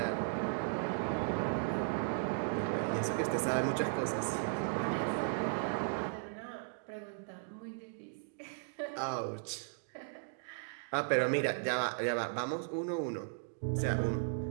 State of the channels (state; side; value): silent; left; digital silence